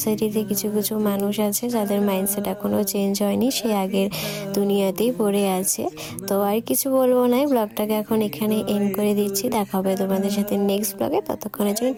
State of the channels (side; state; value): both; identical; correlation 1.00